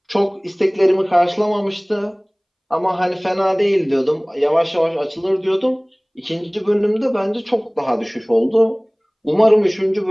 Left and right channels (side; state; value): both; identical; correlation 1.00